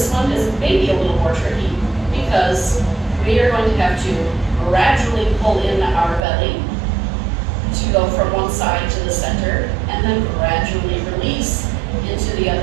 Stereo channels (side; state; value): left; drops out; at 6.2 s